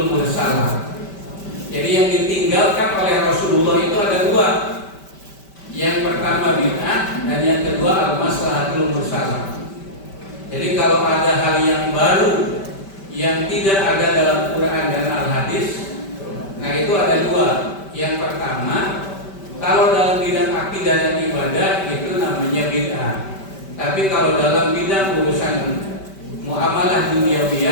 mursalah. Jadi yang ditinggalkan oleh Rasulullah itu ada dua. Yang pertama bid'ah dan yang kedua al-maslahatul mursalah. Jadi kalau ada hal yang baru yang tidak ada dalam Quran dan Al-Hadis, nah itu ada dua. Yang pertama, kalau dalam bidang akidah dan ibadah itu namanya bid'ah. Tapi kalau dalam bidang urusan muamalah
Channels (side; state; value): right; late; 5.1 ms